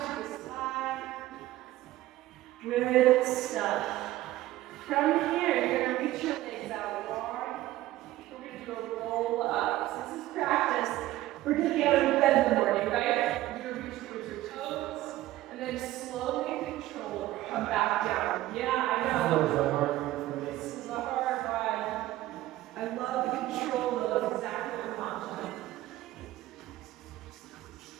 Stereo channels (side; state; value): left; quieter; 15.7 dB